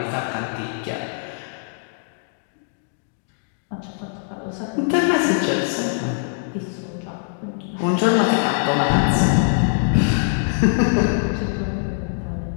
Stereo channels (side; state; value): right; silent; digital silence